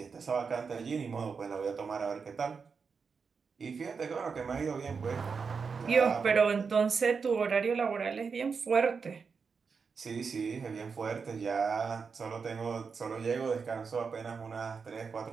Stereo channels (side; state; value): left; quieter; 5.5 dB